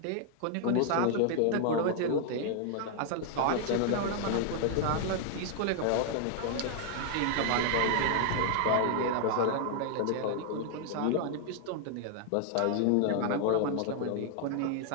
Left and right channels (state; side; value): different; both; correlation 0.00